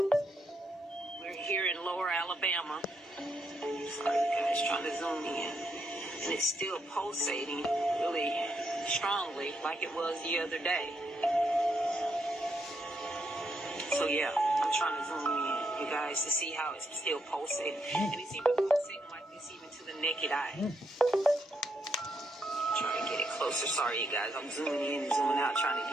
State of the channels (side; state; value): both; normal; correlation 0.78